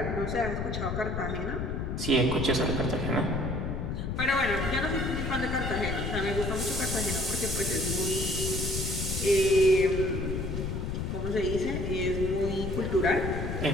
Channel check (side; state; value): left; noise; rumble, 3 dB below the sound